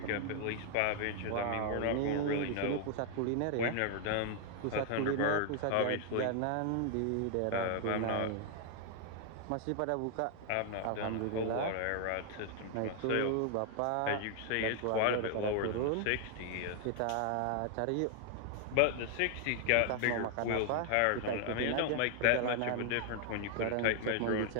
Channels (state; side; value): different; both; correlation 0.00